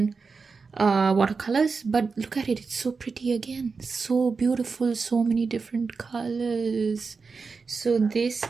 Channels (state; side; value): quieter; left; 4.7 dB